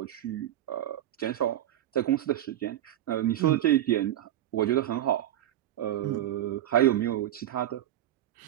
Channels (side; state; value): left; quieter; 12.5 dB